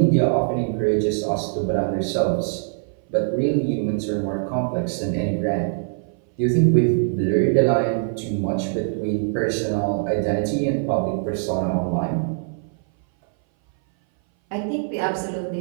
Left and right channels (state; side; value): silent; left; 59 dB below the other